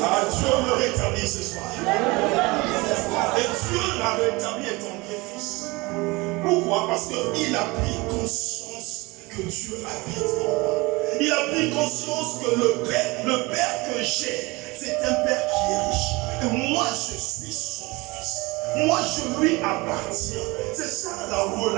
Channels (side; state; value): left; quieter; 23.8 dB